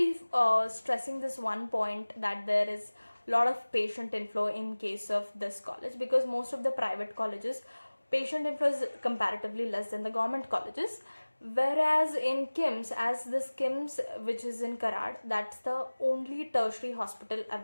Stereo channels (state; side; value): inverted; both; correlation -1.00